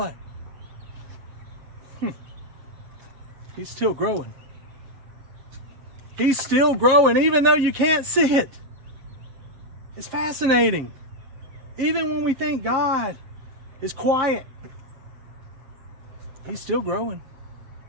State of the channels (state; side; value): late; left; 7.4 ms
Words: He's still growing. He's still growing, even though you can't see it. It's fascinating. Even when we think God is quiet, He's still growing.